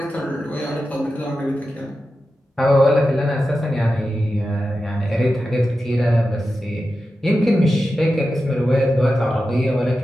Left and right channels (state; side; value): normal; both; correlation 0.92